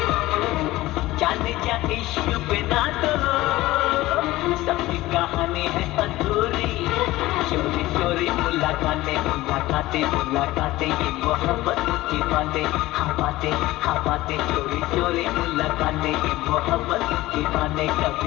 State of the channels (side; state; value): right; quieter; 17.7 dB